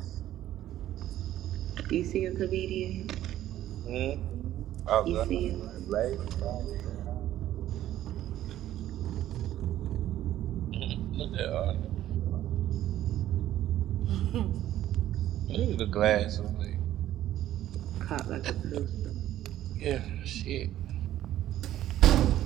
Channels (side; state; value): left; quieter; 12.9 dB